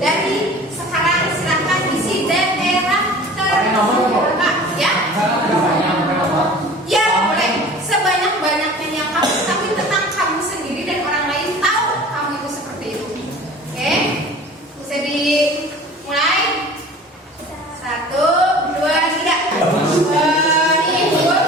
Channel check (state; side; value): normal; both; correlation 0.43